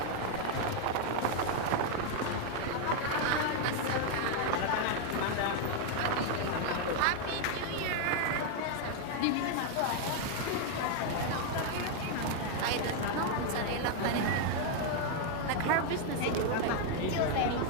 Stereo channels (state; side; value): different; both; correlation 0.00